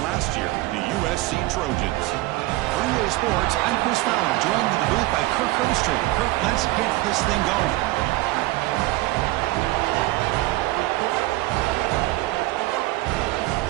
last year, the USC Trojans. For EA Sports, I'm Chris Fowler, joined in the booth by Kirk Herbstreit. Kirk, let's get this thing going.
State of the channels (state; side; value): quieter; left; 19.3 dB